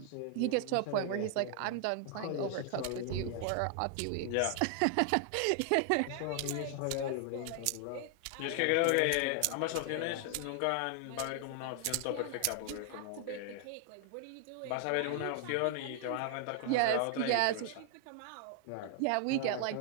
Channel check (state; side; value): different; both; correlation 0.00